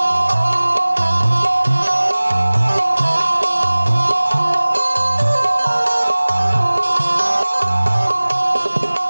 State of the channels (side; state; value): both; inverted; correlation -1.00